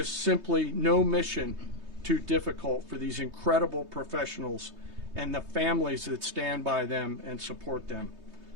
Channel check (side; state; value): left; late; 3.2 ms